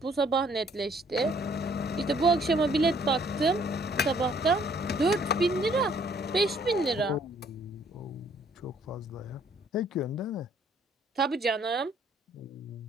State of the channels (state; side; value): normal; both; correlation 0.63